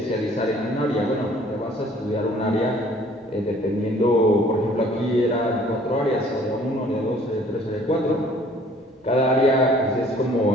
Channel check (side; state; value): both; normal; correlation 0.56